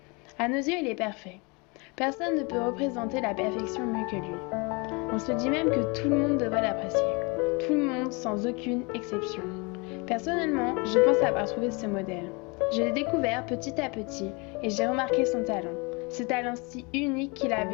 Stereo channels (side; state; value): right; quieter; 29.4 dB